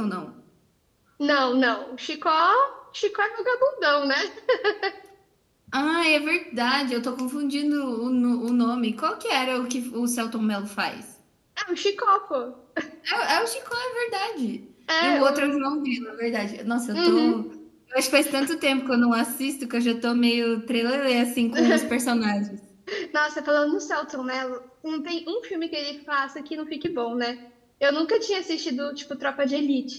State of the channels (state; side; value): identical; both; correlation 1.00